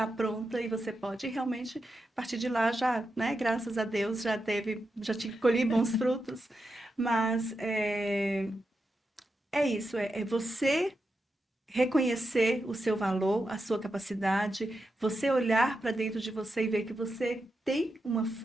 pronta e você pode realmente, a partir de lá, já, né, graças a Deus, já te colhi bons frutos, mas é isso, é você reconhecer o seu valor, a sua capacidade, você olhar para dentro de você e ver que você tem uma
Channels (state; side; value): normal; both; correlation 0.87